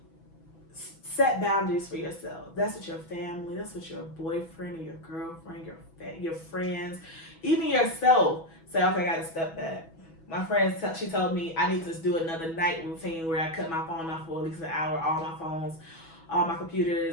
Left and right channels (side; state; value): right; late; 6.1 ms